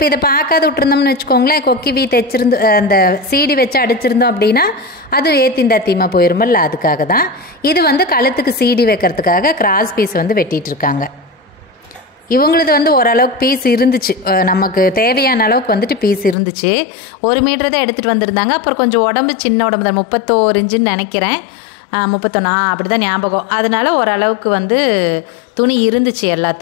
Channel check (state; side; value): drops out; right; at 16.4 s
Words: இதை பார்க்காத விட்டுருந்தோம்னு வச்சுக்கோங்களேன், கொக்கி வீ தைச்சிருந்து அந்த சீடி வச்சு அடிச்சிருந்தோம் அப்படின்னா அது ஏத்திந்தாத்தியமாக போயிருமில்ல, அதுக்காக தான். இது வந்து கழுத்துக்கு சீடி வைக்கிறதுக்காக கிராஸ் பீஸ் வந்து வெட்டிகிட்டு இருக்காங்க. இவங்களது வந்து ஓரளவுக்கு பீஸ் இருந்துச்சு, நமக்கு தேவையான அளவுக்கு வந்துட்டு பீஸ் இருந்துச்சு. 1 மீட்டர் தான் எடுத்துகிட்டு வந்திருந்தாங்க. அப்புறம் கொஞ்சம் உடம்பு சின்ன உடம்பு தான், 31 இன்ச்சுன்னு நினைக்கிறேன், 31 அப்படி தான் ஞாபகம். அதனால ஓரளவுக்கு வந்து துணி இருந்துச்சு